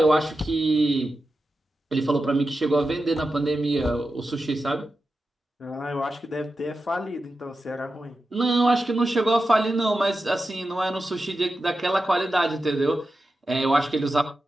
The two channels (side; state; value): both; normal; correlation 0.91